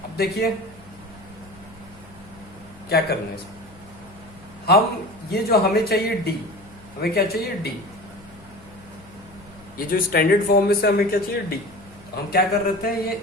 अब देखिए क्या करना है इसमें। हम ये जो हमें चाहिए डी, हमें क्या चाहिए? डी। ये जो स्टैंडर्ड फॉर्म में से हमें क्या चाहिए? डी। तो हम क्या कर रहे थे,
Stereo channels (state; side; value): noise; left; hum, 23 dB below the sound